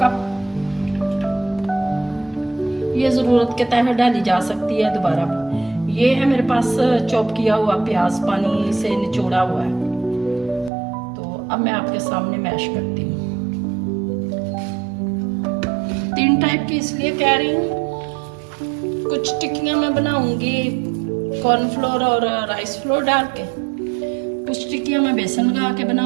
कप। ये ज़रूरत के तहत डाली जा सकती है दोबारा। ये है मेरे पास चॉप किया हुआ प्याज, पानी से निचोड़ा हुआ है। तो अब मैं आपके सामने मैश करती हूँ। 3 टाइप की इसलिए कह रही हूँ। कुछ टिक्कियाँ मैं बनाऊंगी कॉर्नफ्लोर और राइस फ्लोर डाल के, कुछ टिक्कियाँ मैं बेसन लगा के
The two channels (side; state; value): left; drops out; at 10.7 s